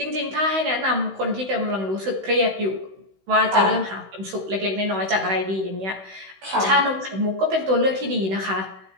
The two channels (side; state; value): left; late; 16 ms